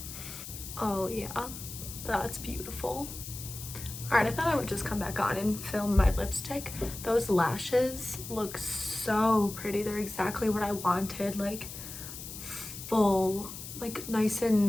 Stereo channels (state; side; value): noise; left; hiss, 10 dB below the sound